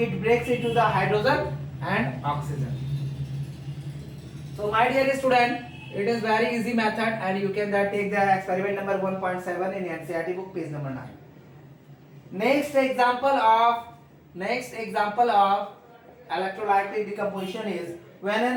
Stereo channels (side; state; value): both; identical; correlation 1.00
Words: breaks into the hydrogen and oxygen. So my dear student, it is very easy method and you can take the experiment number 1.7 in NCERT book, page number 9. Next example of electrolytic decomposition is when an